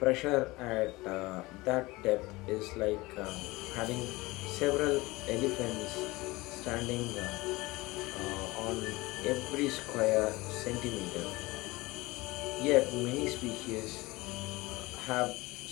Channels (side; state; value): right; quieter; 21.5 dB